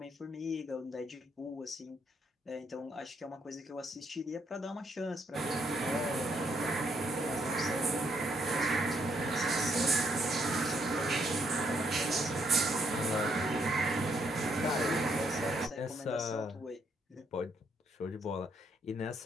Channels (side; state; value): both; normal; correlation 0.73